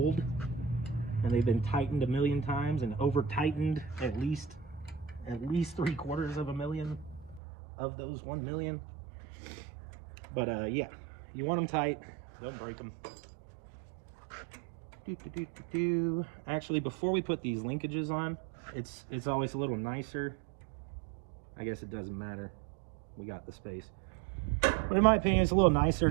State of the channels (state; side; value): drops out; left; at 7.4 s